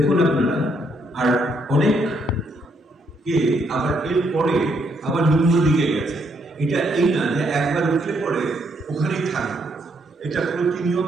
আপনারা, আর অনেক কে আবার এর পরে আবার নিম্ন দিকে গেছে। এটা এই না যে একবার উঠলে পরে ওখানেই থাকবে, এটা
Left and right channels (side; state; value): both; normal; correlation 0.73